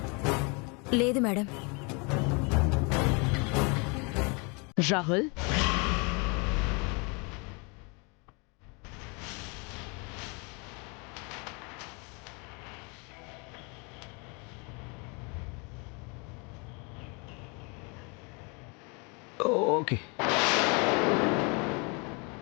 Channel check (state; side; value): quieter; right; 31.6 dB